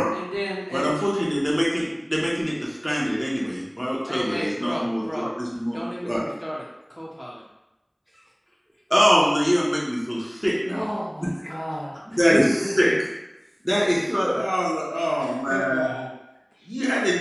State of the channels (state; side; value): identical; both; correlation 1.00